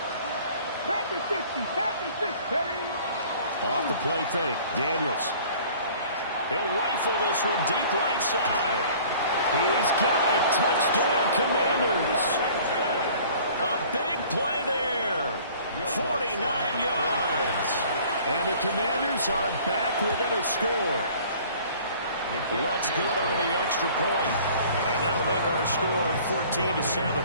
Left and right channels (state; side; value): inverted; both; correlation -0.50